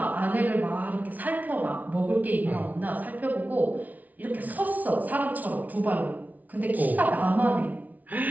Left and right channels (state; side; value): late; left; 0.075 ms